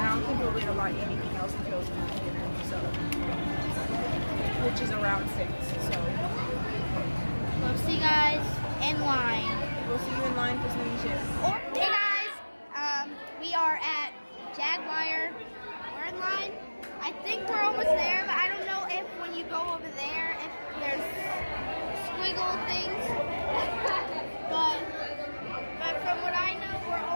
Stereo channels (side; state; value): both; inverted; correlation -1.00